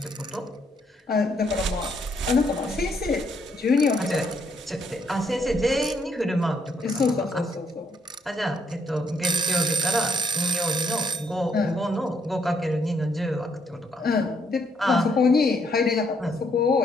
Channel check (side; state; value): both; normal; correlation 0.71